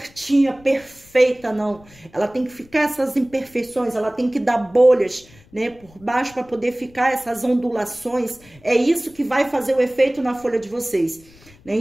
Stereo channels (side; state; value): left; noise; rumble, 26 dB below the sound